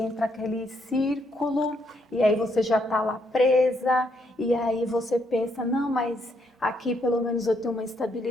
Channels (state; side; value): normal; both; correlation 0.74